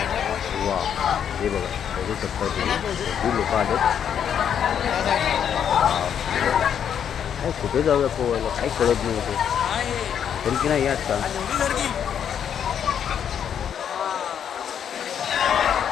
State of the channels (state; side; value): quieter; right; 8.6 dB